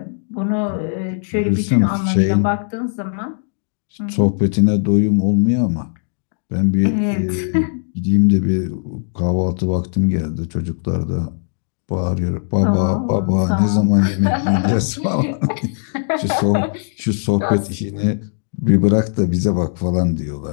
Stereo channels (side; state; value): right; silent; digital silence